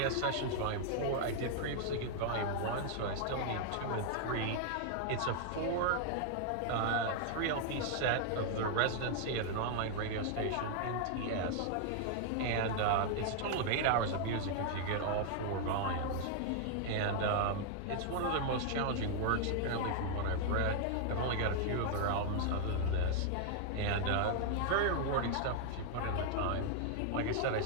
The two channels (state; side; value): different; both; correlation 0.00